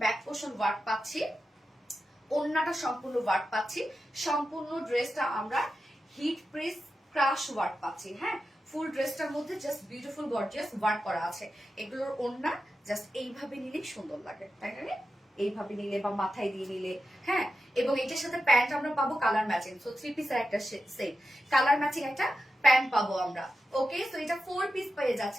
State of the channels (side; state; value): both; normal; correlation 0.91